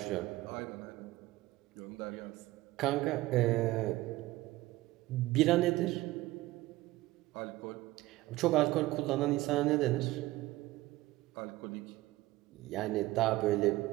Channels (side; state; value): left; quieter; 18.1 dB